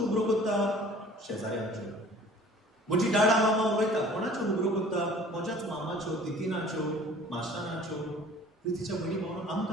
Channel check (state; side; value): normal; both; correlation 0.49